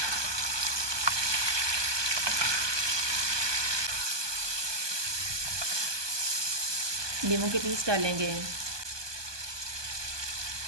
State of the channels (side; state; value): left; late; 1.2 ms